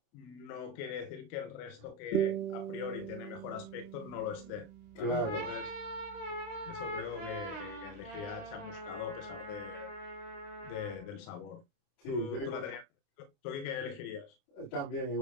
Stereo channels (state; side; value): late; right; 29 ms